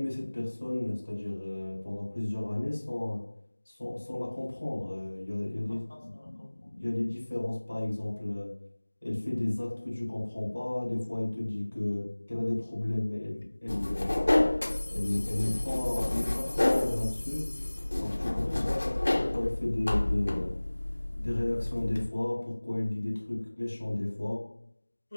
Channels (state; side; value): inverted; both; correlation -1.00